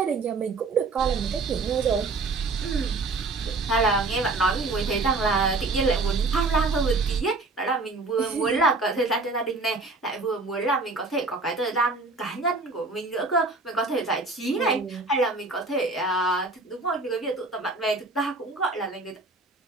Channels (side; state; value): left; quieter; 3.5 dB